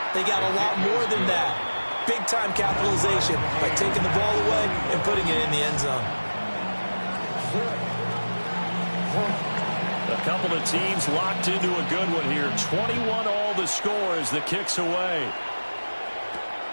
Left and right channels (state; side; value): inverted; both; correlation -1.00